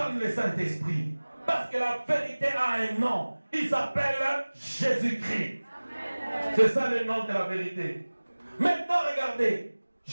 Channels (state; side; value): inverted; both; correlation -1.00